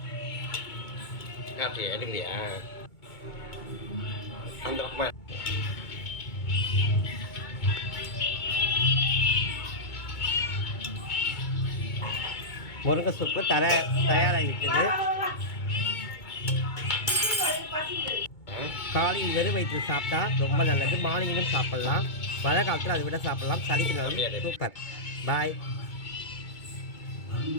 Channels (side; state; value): right; late; 2.2 ms